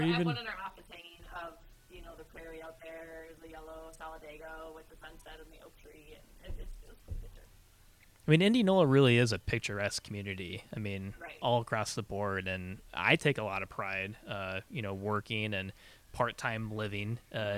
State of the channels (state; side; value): identical; both; correlation 1.00